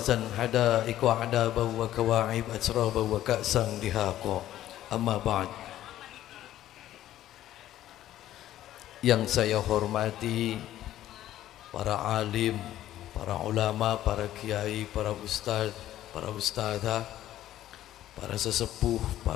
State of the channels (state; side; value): quieter; right; 13.1 dB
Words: hadaiqa wa adaban wa kawa'ib atraba wa ka'san dihaqa. Amma ba'd. Yang saya hormati para alim, para ulama, para kiai, para ustaz, para ustazah, para sesepuh,